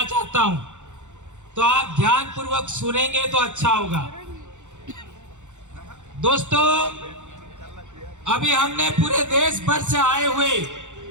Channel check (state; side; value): late; left; 0.85 ms